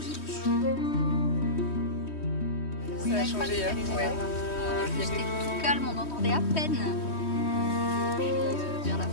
dessus. Ça a changé hier. Ouais. C'était tout calme, on entendait à peine. Vers la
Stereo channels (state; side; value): late; right; 3.2 ms